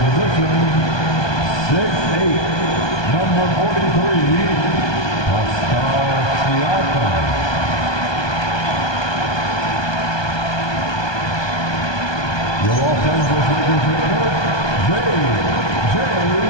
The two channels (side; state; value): right; late; 1.2 ms